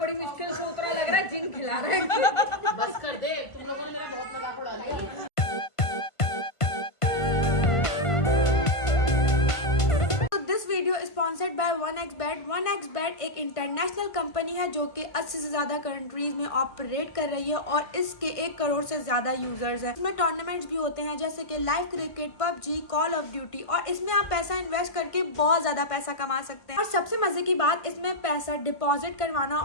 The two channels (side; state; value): right; late; 1.5 ms